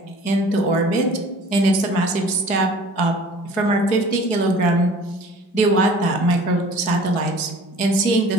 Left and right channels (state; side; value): late; right; 4.8 ms